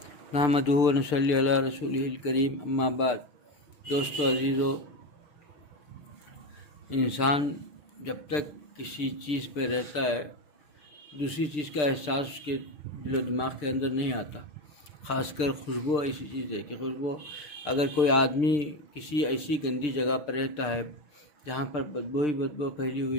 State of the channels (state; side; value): late; right; 6.7 ms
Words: نحمدہ و نصلی علی رسولہ الکریم اما بعد۔ دوستو عزیزو، انسان جب تک کسی چیز پہ رہتا ہے دوسری چیز کا احساس اس کے دل و دماغ کے اندر نہیں آتا۔ خاص کر خوشبو ایسی چیز ہے کہ خوشبو، اگر کوئی آدمی کسی ایسی گندی جگہ پر رہتا ہے جہاں پر بدبو ہی بدبو پھیلی